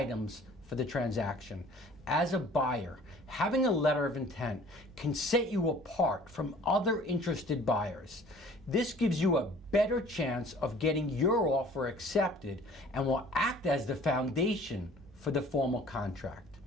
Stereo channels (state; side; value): normal; both; correlation 0.51